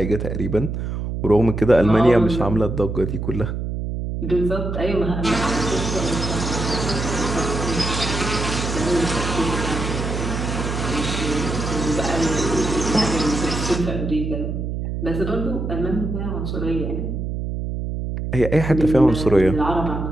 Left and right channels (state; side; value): noise; right; hum, 4 dB below the sound